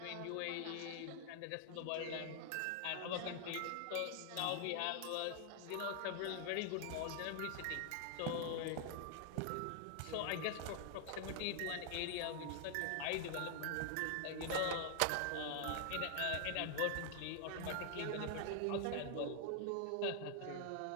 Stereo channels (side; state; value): both; different; correlation 0.00